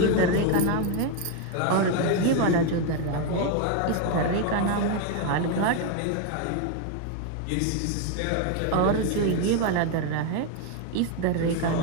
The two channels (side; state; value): both; different; correlation 0.01